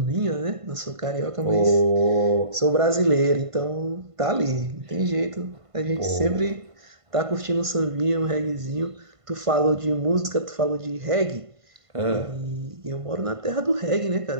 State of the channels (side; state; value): left; late; 1.5 ms